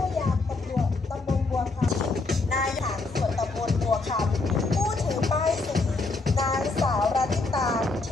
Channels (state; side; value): quieter; right; 3.6 dB